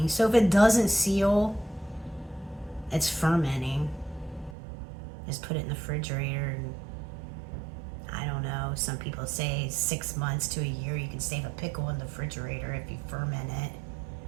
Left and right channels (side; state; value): left; drops out; at 4.5 s